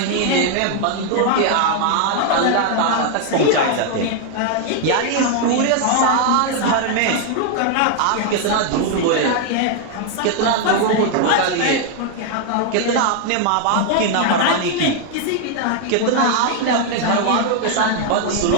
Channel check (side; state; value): both; different; correlation 0.00